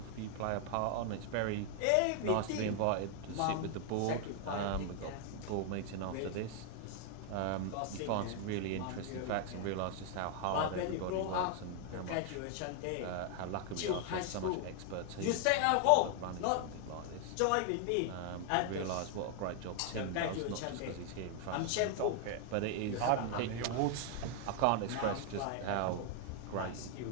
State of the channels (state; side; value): different; both; correlation 0.00